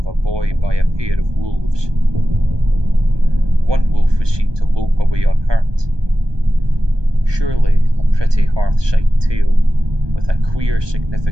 a boy by a pair of wolves. One wolf was seen to lope away unhurt. Surely a pretty hearth-side tale, with a queer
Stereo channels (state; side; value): late; left; 1.2 ms